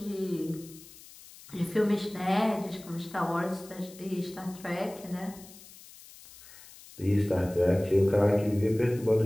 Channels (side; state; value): left; noise; hiss, 20 dB below the sound